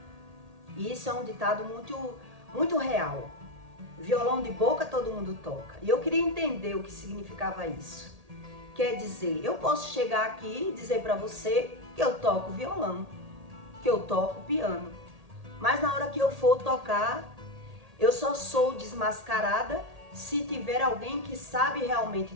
E isso é um ditado muito real. Violão de boca todo mundo toca. E eu queria entender o que significava isso. Quer dizer, eu posso chegar aqui e dizer para você que eu toco violão, que eu toco piano. Mas na hora que eu for tocar, eu só sou desmascarada se tiver alguém que sabe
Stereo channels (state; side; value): late; left; 1.8 ms